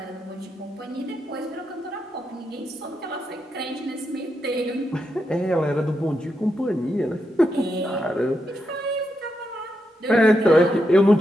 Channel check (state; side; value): normal; both; correlation 0.84